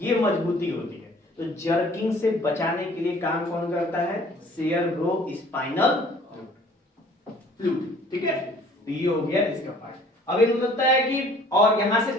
ये मजबूती होती है। तो जर्किंग से बचाने के लिए काम कौन करता है? सेरेब्रो स्पाइनल फ्लूइड, ठीक है। तो ये हो गया इसका पार्ट। अब ये लगता है कि, और यहां से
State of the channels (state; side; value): normal; both; correlation 0.53